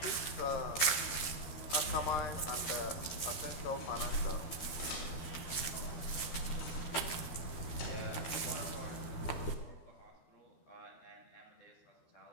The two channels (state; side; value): late; right; 12 ms